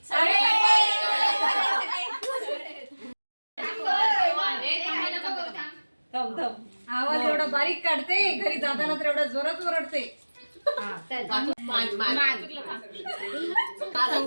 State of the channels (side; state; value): both; inverted; correlation -1.00